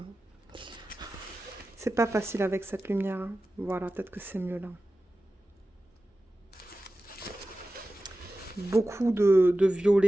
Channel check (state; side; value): normal; both; correlation 0.94